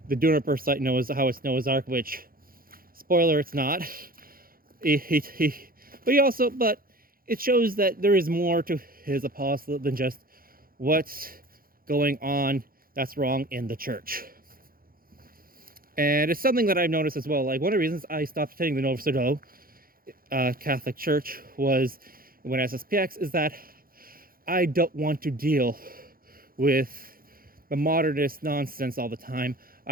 the Juniper site, how it's Noah's Ark, which, spoiler, it's not. But it shows that there is more to his apostolate than just what's going on that's wrong in the church. And it's something that I've noticed as well. Like, one of the reasons I stopped attending the Novus Ordo Catholic Church was when SSPX is that I don't want to deal with the modernist nonsense all the time.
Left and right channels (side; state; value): left; late; 0.42 ms